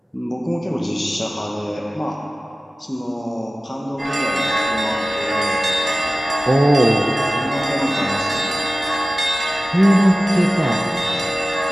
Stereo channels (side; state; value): both; normal; correlation 0.96